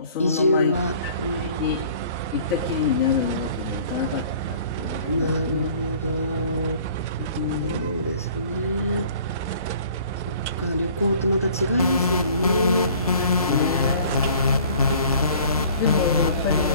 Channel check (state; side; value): inverted; both; correlation -0.51